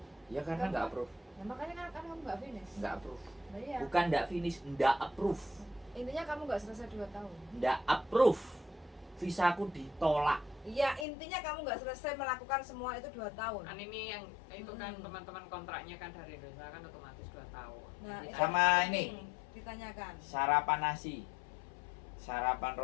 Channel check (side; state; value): right; drops out; at 11.1 s